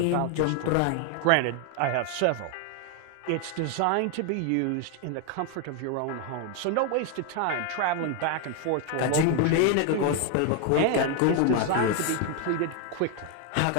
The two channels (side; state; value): both; different; correlation 0.01